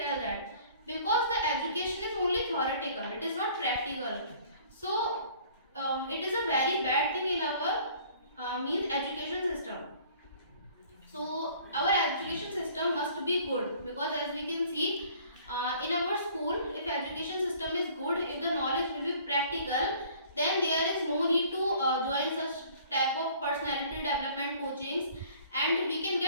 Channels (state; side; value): inverted; both; correlation -0.53